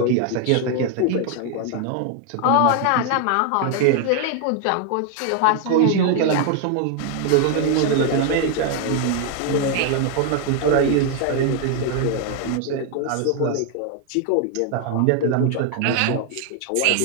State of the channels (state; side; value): different; both; correlation 0.00